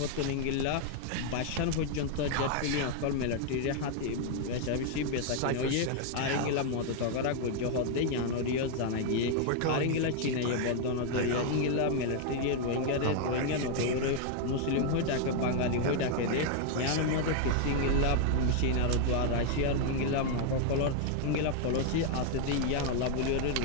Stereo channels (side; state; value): both; different; correlation 0.00